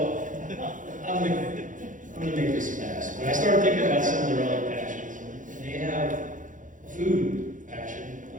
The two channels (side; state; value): left; late; 0.38 ms